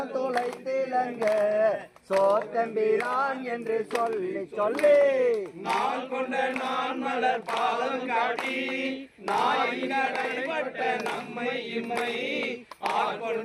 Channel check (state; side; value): identical; both; correlation 1.00